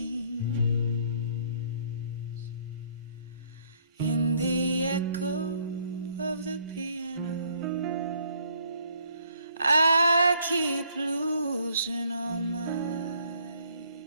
In the echo of the piano, I keep losing all my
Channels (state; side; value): inverted; both; correlation -0.65